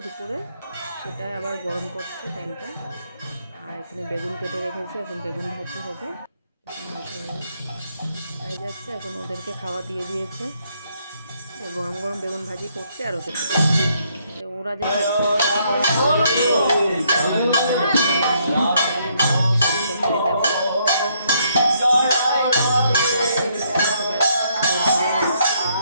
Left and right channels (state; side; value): inverted; both; correlation -0.71